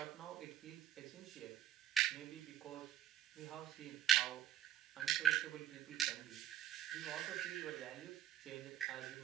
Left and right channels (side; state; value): left; quieter; 12.3 dB